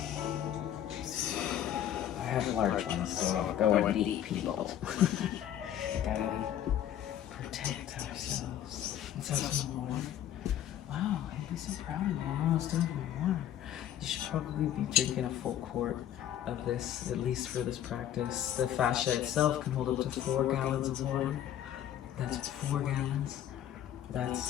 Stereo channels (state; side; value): quieter; right; 11.0 dB